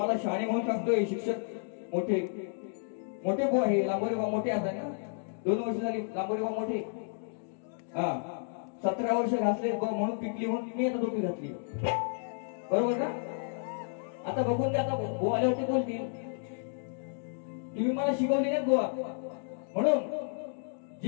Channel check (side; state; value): right; silent; digital silence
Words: शाणे म्हणून सांगतोय. शिक्षक मोठे मोठे बुवा आहे लांबोरे बुवा मोठे असतात ना. 2 वर्ष झाली लांबोरे बुवा मोठे. हा 17 वर्ष घातले म्हणून पिकली म्हणून मी आता टोपी घातली बरोबर का. आता बघून द्या आता बुवा आल्यावरती बोलतील तुम्ही मला शिकवले नाहीत बुवा. म्हणून